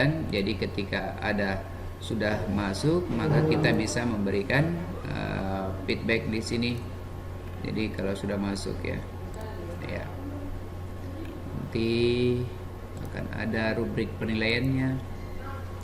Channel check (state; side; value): identical; both; correlation 1.00